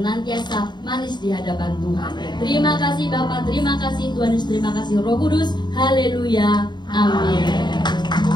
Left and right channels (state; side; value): late; right; 0.21 ms